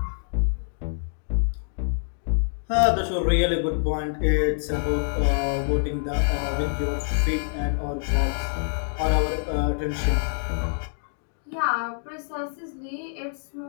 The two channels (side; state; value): right; silent; digital silence